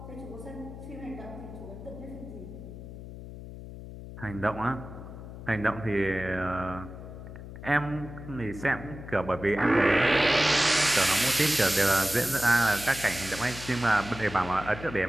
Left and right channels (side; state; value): left; noise; hum, 12 dB below the sound